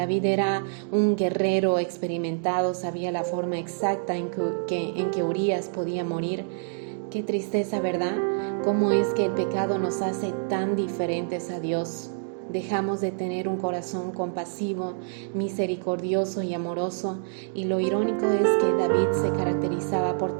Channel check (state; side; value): silent; left; digital silence